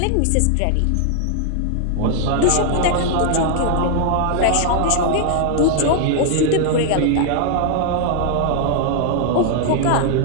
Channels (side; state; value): both; different; correlation 0.00